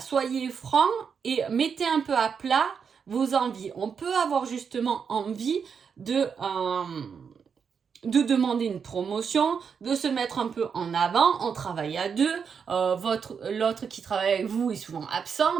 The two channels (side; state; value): left; quieter; 6.5 dB